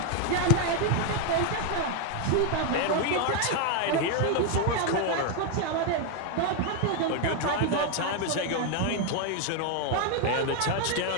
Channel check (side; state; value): both; different; correlation 0.01